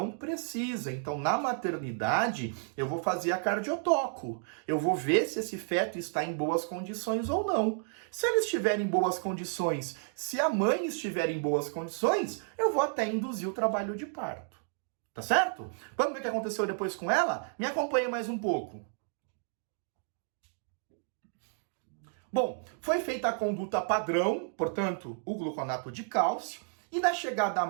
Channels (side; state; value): left; silent; 57 dB below the other